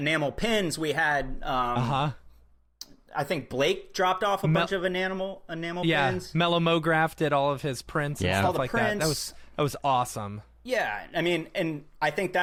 pins. We had, I think Blake dropped off a bunch of enamel pins. Mellow Mograph did all of his prints and Yeah. stuff All the like prints. that. That was awesome. Yeah, I mean, and I think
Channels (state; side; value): identical; both; correlation 1.00